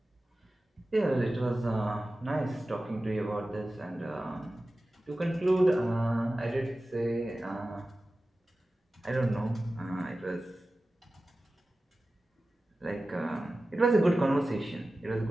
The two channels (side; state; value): both; normal; correlation 0.95